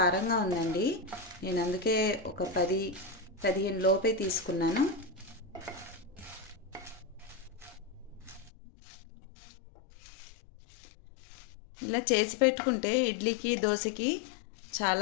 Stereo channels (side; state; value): right; drops out; at 8.5 s